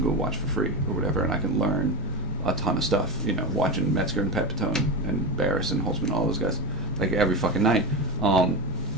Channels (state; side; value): normal; both; correlation 0.20